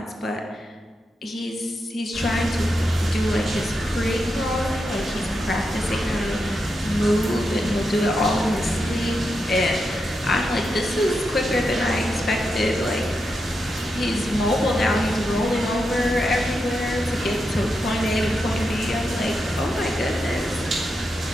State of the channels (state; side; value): normal; both; correlation 0.86